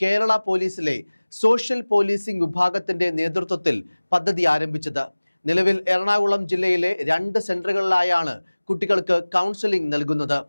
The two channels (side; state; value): both; inverted; correlation -1.00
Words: കേരള പോലീസിലെ സോഷ്യൽ പോലീസിംഗ് വിഭാഗത്തിന്റെ നേതൃത്വത്തിൽ പദ്ധതി ആരംഭിച്ചത്. നിലവിൽ എറണാകുളം ജില്ലയിലെ 2 സെന്ററുകളിലായാണ് കുട്ടികൾക്ക് കൗൺസിലിംഗ് നൽകുന്നത്.